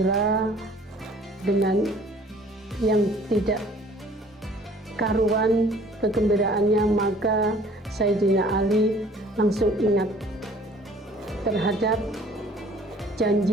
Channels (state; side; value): normal; both; correlation 0.53